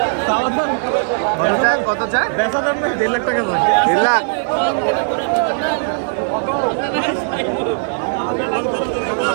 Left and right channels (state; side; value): silent; left; digital silence